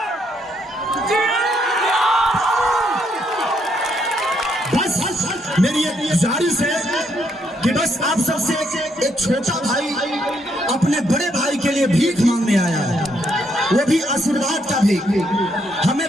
बस मेरी एक गुजारिश है कि बस आप सबसे एक छोटा भाई अपने बड़े भाई के लिए भीख मांगने आया है, वो भी आशीर्वाद का भीख। हमें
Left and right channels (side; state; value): both; normal; correlation 0.74